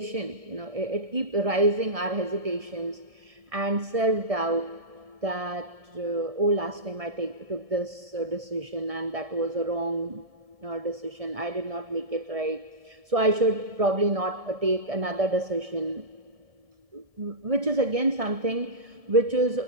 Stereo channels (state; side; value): late; left; 1.7 ms